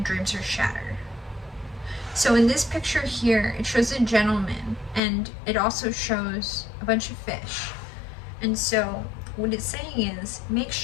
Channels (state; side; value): drops out; right; at 5.0 s